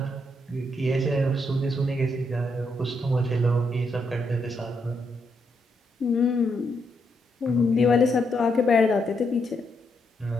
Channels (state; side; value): normal; both; correlation 0.78